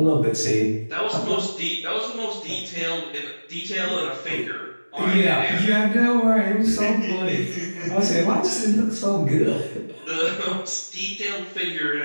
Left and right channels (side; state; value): both; inverted; correlation -1.00